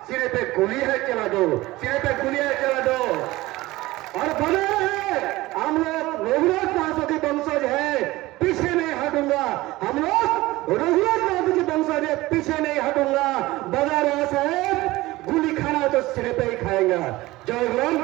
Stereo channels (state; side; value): quieter; left; 18.9 dB